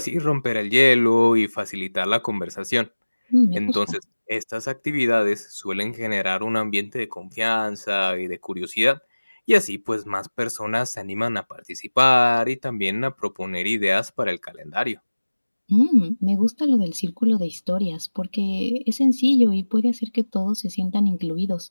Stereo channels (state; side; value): inverted; both; correlation -1.00